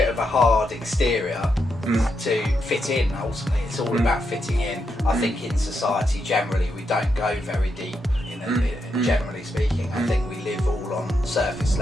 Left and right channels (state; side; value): normal; both; correlation 0.82